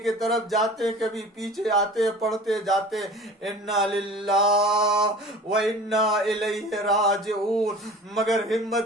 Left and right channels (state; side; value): normal; both; correlation 0.42